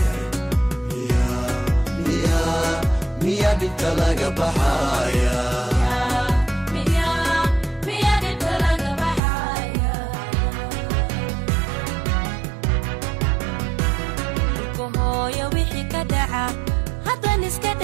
miya dhibta laga baxaya hooyo wixii ka dhaca haddaan iska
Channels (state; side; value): drops out; left; at 9.2 s